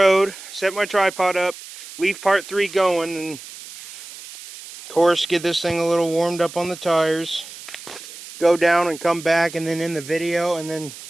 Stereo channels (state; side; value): noise; right; hiss, 15 dB below the sound